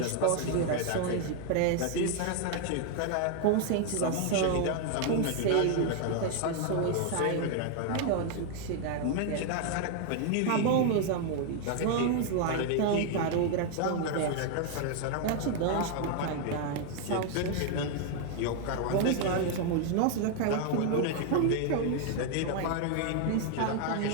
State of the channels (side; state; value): both; different; correlation 0.00